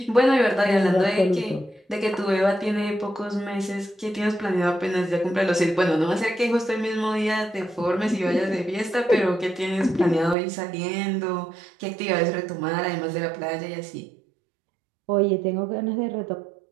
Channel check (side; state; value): left; drops out; at 10.4 s